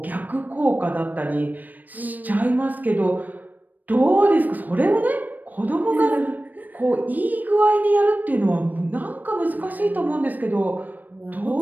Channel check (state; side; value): late; left; 0.085 ms